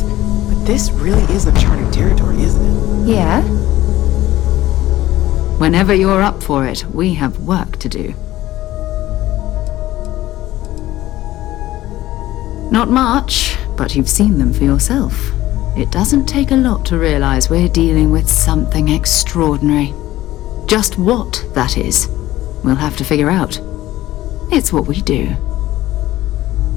but this really is uncharted territory, isn't it? Yeah? Whenever you're up for it, we have work to do. Not much, but you've seen them for yourself. It doesn't take a lot to realize we're dealing with something extraordinary. Just what that is, we'll have to figure out. It's what we do.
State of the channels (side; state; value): right; quieter; 15.5 dB